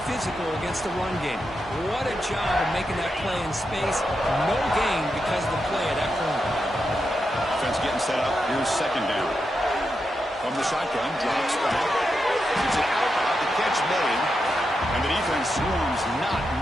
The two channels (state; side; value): normal; both; correlation 0.86